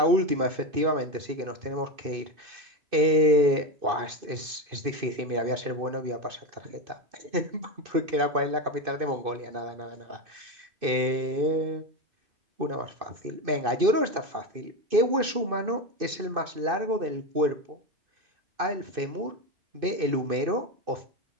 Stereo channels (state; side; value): late; left; 2.5 ms